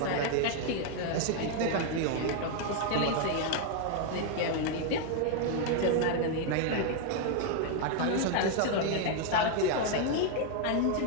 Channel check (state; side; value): different; both; correlation 0.00